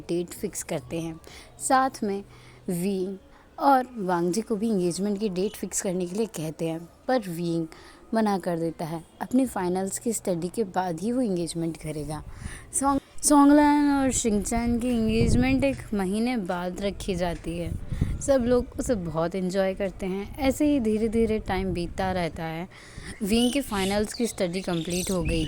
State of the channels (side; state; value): both; identical; correlation 1.00